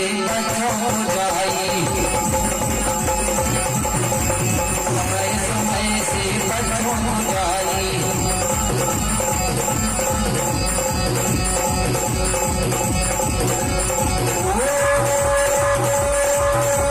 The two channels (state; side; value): identical; both; correlation 1.00